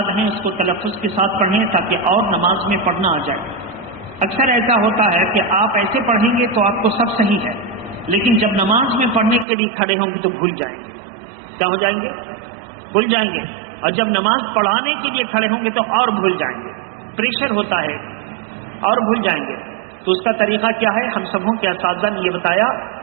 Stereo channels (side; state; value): left; drops out; at 9.5 s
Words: ہیں اس کو تلفظ کے ساتھ پڑھیں تاکہ اور نماز میں پڑھنا آ جائے. اکثر ایسا ہوتا ہے کہ آپ ایسے پڑھیں گے تو آپ کو سب صحیح ہے، لیکن جب نماز میں پڑھنے کے لیے کھڑے ہوں گے تو بھول جائیں گے. کیا ہو جائیں گے؟ بھول جائیں گے. اور جب نماز پڑھانے کے لیے کھڑے ہوں گے تو اور بھول جائیں گے. پریشر ہوتا ہے اور بھول جائیں گے. تو اس کا طریقہ کیا ہے؟ ہم سبوں کے اساتذہ نے یہ بتایا